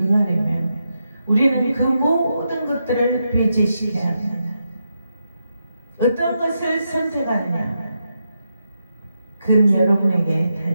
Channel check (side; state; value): both; inverted; correlation -0.85